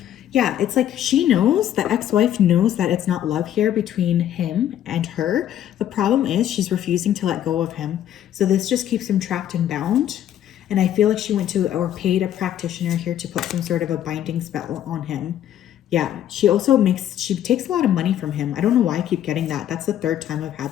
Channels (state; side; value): quieter; right; 11.1 dB